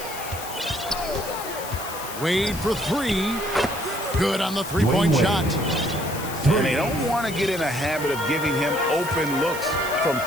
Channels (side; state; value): left; noise; hiss, 11 dB below the sound